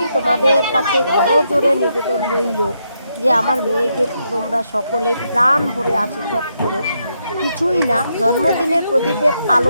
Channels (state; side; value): inverted; both; correlation -0.80